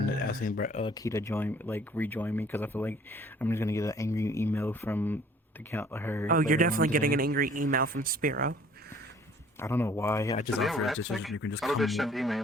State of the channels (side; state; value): both; normal; correlation 0.55